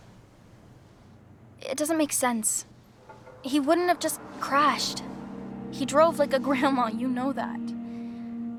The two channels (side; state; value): both; identical; correlation 1.00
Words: It doesn't make sense. He wouldn't have just crashed. He drove like a grandma, you know that.